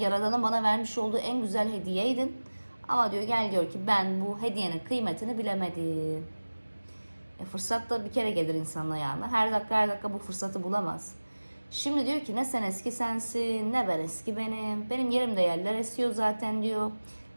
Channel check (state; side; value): inverted; both; correlation -1.00